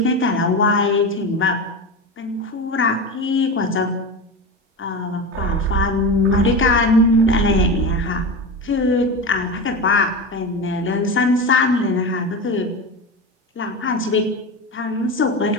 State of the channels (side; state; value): both; normal; correlation 0.23